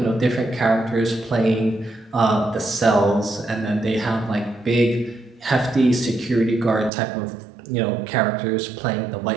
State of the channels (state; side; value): drops out; left; at 6.9 s